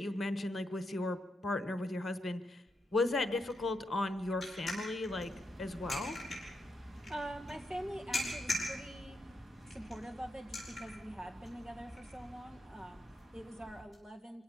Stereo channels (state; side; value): normal; both; correlation 0.83